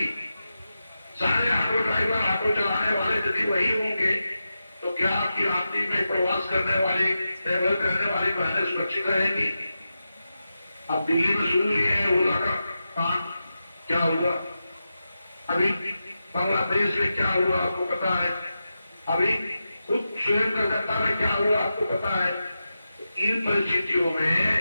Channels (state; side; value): inverted; both; correlation -0.91